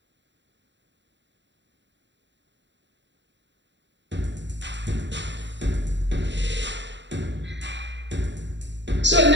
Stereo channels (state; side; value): late; left; 0.52 ms